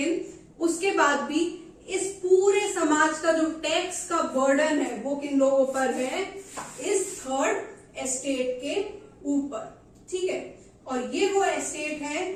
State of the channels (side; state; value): both; identical; correlation 1.00